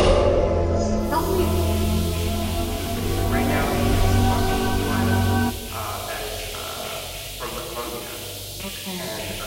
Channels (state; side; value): identical; both; correlation 1.00